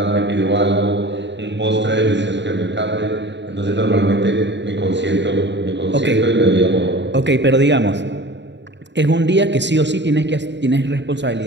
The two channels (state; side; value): late; left; 0.52 ms